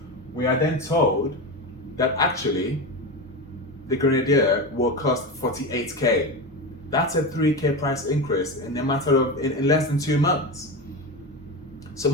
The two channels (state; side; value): normal; both; correlation 0.21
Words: we are then told that actually the Grenadier will cost 48K. That's a 3K price increase in a matter of, in less than 2 months. So